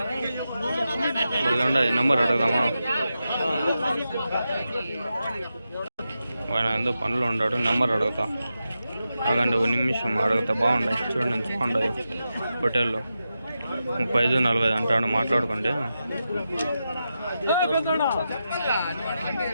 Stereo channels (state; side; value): inverted; both; correlation -0.89